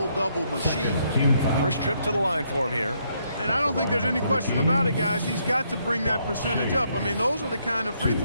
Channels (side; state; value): both; inverted; correlation -0.73